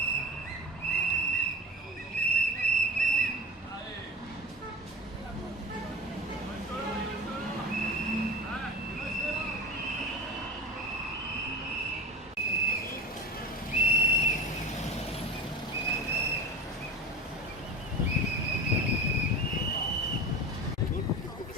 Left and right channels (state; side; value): normal; both; correlation 0.32